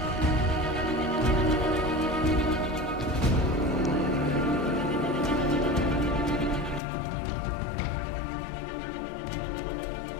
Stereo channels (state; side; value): drops out; right; at 6.8 s